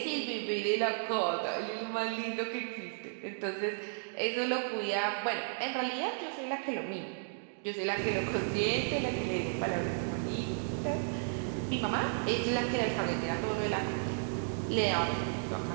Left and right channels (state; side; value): silent; left; digital silence